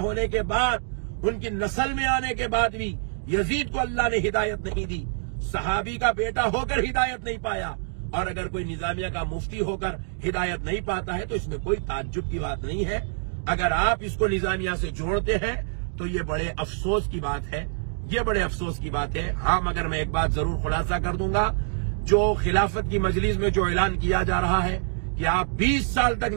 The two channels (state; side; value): silent; left; digital silence